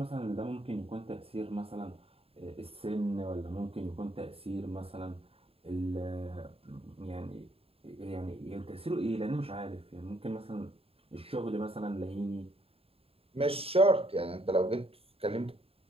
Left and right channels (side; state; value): left; late; 0.28 ms